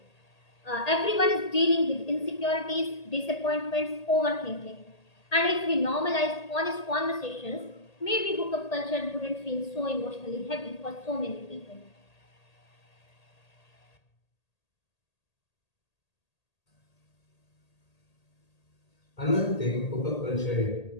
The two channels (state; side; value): late; right; 1.8 ms